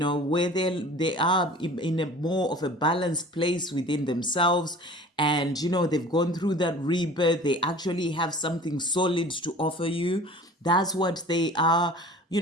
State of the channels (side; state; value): both; normal; correlation 0.43